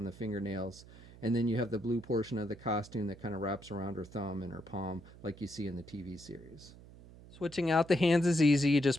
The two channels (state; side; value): noise; right; hum, 20 dB below the sound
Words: the fingernails. And then you have the blue portion of the costume that kind of wraps around her thumb and her palm like you see in the TV series. Switching out the hands is easy. You